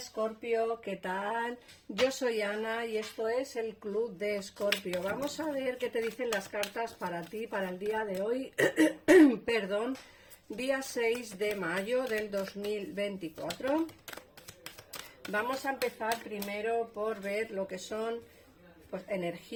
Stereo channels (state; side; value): identical; both; correlation 1.00